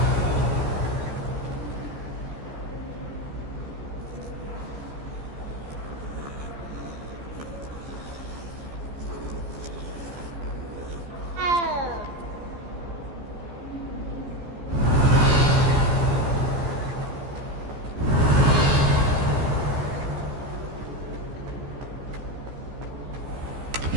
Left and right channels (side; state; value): left; late; 14 ms